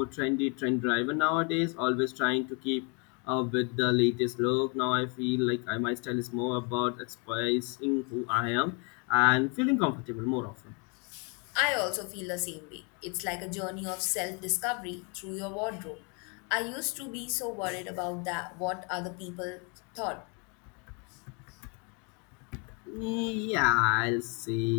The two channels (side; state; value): right; quieter; 34.5 dB